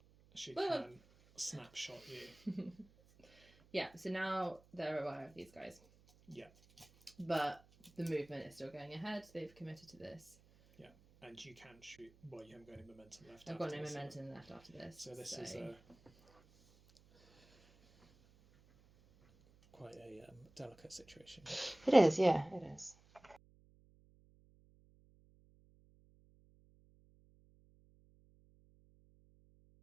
She Well- can snapshot you. Yeah, so now they're aware of these guys. Yeah. But the movement is still going ahead. They've committed to this. And you can shoot... Well, you haven't got any momentum left. I've got after no this, momentum left after this. So this is quite a delicate situation. It is, yeah, it is.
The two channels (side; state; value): right; noise; hum, 27 dB below the sound